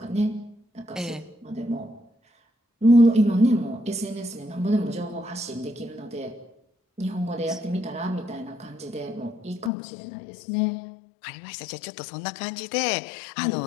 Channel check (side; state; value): right; drops out; at 9.7 s